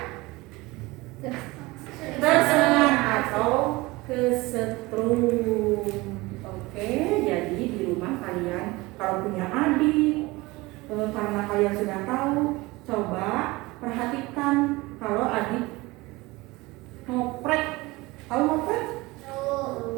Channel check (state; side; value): quieter; left; 21.8 dB